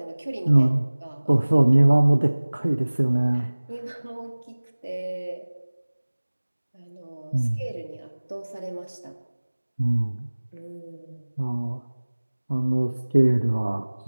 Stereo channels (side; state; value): both; inverted; correlation -1.00